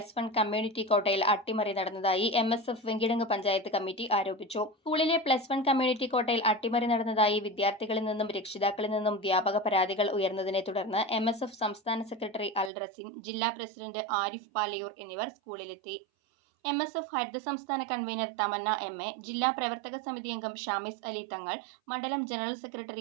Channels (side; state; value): left; drops out; at 12.7 s